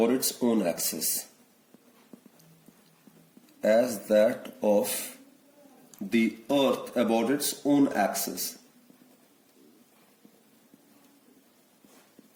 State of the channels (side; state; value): both; identical; correlation 1.00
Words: its own axis. As that of the earth about its own axis.